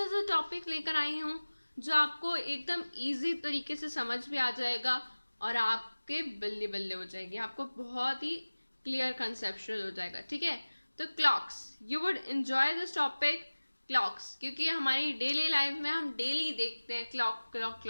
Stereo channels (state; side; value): inverted; both; correlation -1.00